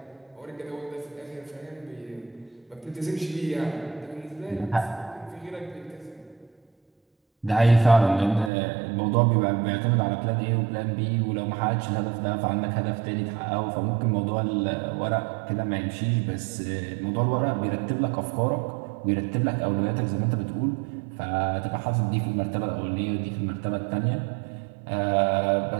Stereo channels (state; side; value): drops out; left; at 8.5 s